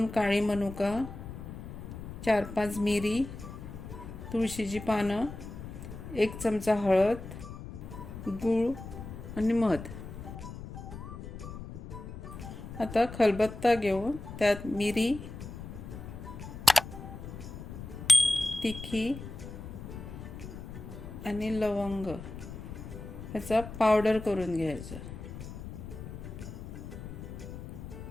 काळी मनुका, 4-5 मिरी, तुळशीची पानं, 1 चमचा हळद, गूळ आणि मध। आता खलबत्ता घेऊन त्यात मिरी, तिखी आणि लवंग याचा पावडर करून घ्यायचा।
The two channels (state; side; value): noise; left; rumble, 10 dB below the sound